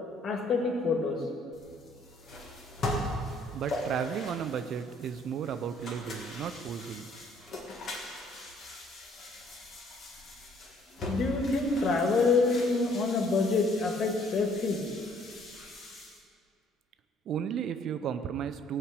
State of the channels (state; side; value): normal; both; correlation 0.61